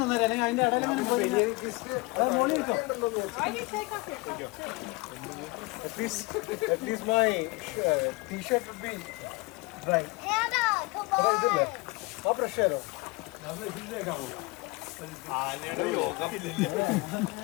At least my t-shirt would be dry. How pressure?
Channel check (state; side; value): quieter; right; 25.1 dB